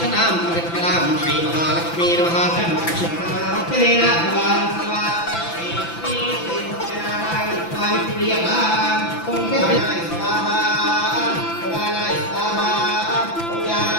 परिष्करां श्रीमहालक्ष्मी नमः सर्वक्षणेन भवान्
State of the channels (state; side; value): late; right; 5.9 ms